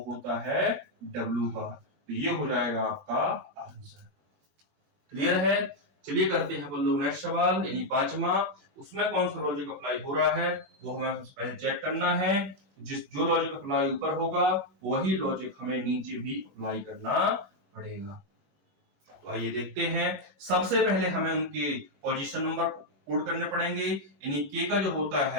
होता है डब्ल्यू का। तो ये हो जाएगा आपका आंसर। क्लियर है। चलिए करते हैं अपन लोग नेक्स्ट सवाल, यानी 5वां। उसमें कौन सा लॉजिक अप्लाई हो रहा है वो हमें सबसे पहले चेक करना है। जो लॉजिक अप्लाई ऊपर होगा वही लॉजिक हमें नीचे भी अप्लाई करना पड़ेगा। तो आइए देखते हैं। सबसे पहले हमें उनके पोजीशन नंबर कोड करने पड़ेंगे, यानी के का जो होता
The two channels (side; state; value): left; late; 20 ms